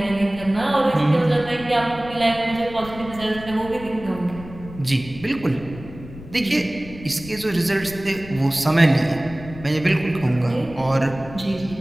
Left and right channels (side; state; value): left; noise; rumble, 15 dB below the sound